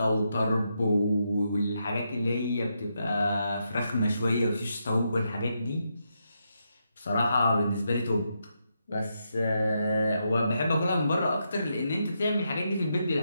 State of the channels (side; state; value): both; inverted; correlation -0.82